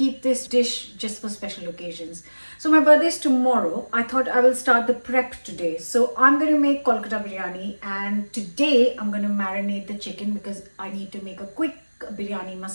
this dish just for special occasions. So my birthday is tomorrow. I thought I will start the prep today. So I'm going to make Kolkata Biryani and today I'm going to marinate the chicken because I need to make a quick biryani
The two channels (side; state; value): both; inverted; correlation -1.00